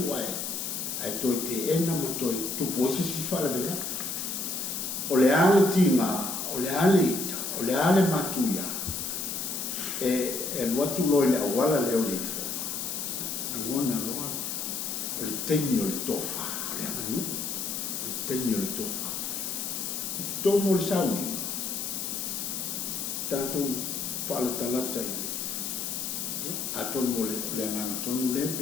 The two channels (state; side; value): noise; left; hiss, 3 dB below the sound